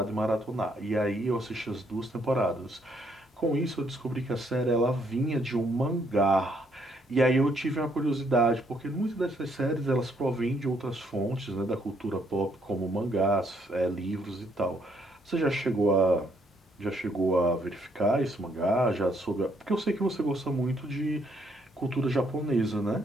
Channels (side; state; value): both; normal; correlation 0.70